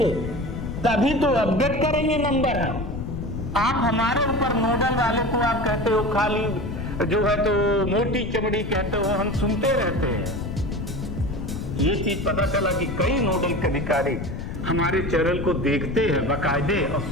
तभी तो अपडेट करेंगे नंबर। आप हमारे ऊपर नोडल वाले को आप कहते हो खाली जो है तो मोटी चमड़ी कहते हो, हम सुनते रहते हैं। ये चीज पता चला कि कई नोडल अधिकारी हमारे चैनल को देखते हैं बाकायदे और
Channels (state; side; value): noise; left; rumble, 6 dB below the sound